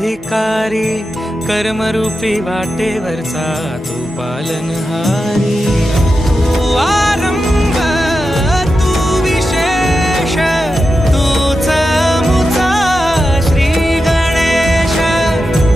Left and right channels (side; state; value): both; normal; correlation 0.90